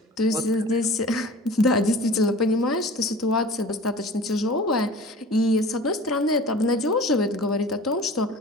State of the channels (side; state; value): both; normal; correlation 0.41